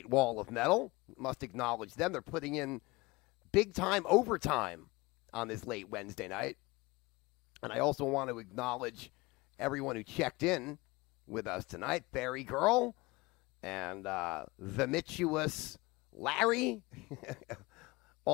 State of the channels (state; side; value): quieter; right; 22.9 dB